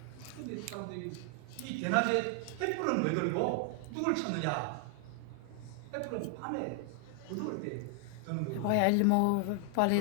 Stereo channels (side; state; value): both; different; correlation 0.00